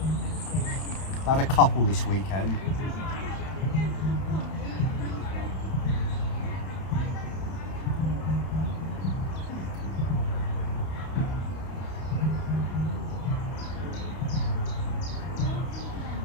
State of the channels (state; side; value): late; right; 31 ms